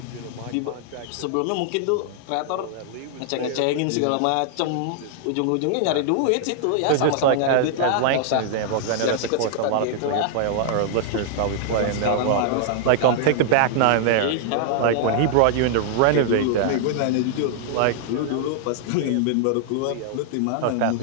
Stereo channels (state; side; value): different; both; correlation -0.01